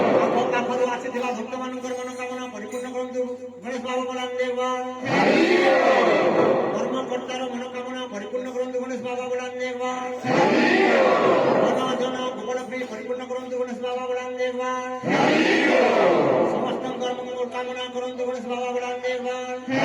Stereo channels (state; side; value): identical; both; correlation 1.00